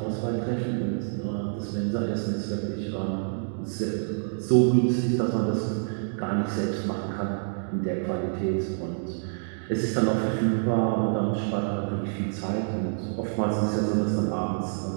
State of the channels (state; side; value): silent; left; digital silence